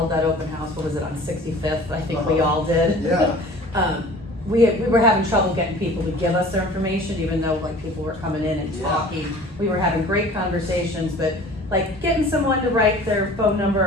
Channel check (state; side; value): normal; both; correlation 0.45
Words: that open house, what was it, on 65th? I think we all did. Yeah. We were having trouble getting people to give us their information, even though like people were coming in and Yeah. talking. We were having great conversations, but like getting someone to write their phone number